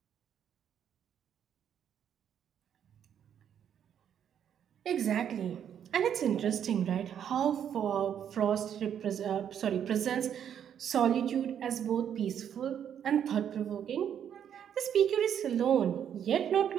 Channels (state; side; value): quieter; left; 9.0 dB